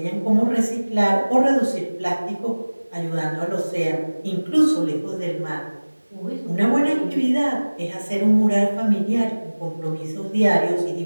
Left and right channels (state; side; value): inverted; both; correlation -1.00